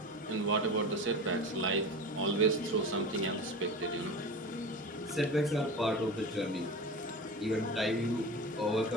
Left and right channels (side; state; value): both; normal; correlation 0.30